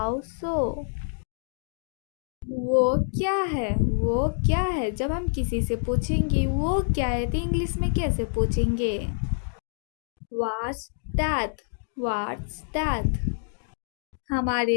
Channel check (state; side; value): silent; right; digital silence